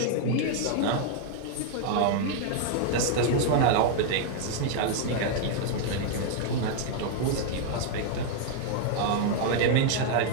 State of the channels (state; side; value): different; both; correlation 0.00